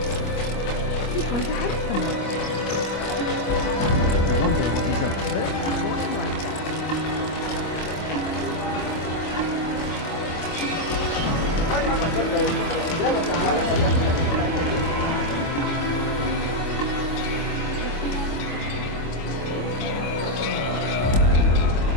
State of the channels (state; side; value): late; right; 25 ms